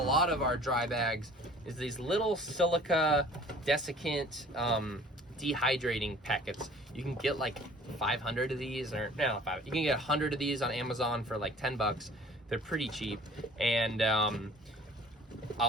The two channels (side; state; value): both; normal; correlation 0.50